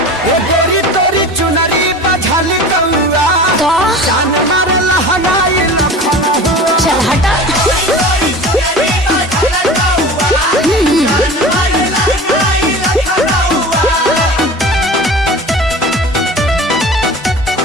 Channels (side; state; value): both; normal; correlation 0.36